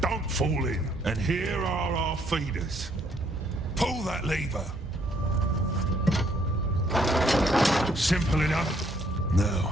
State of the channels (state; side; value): normal; both; correlation 0.67